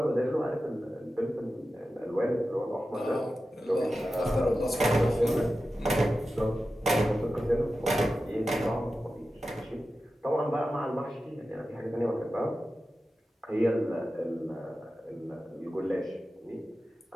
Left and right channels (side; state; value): both; normal; correlation 0.93